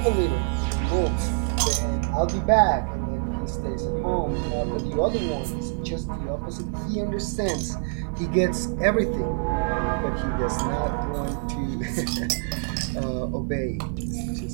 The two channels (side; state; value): left; silent; digital silence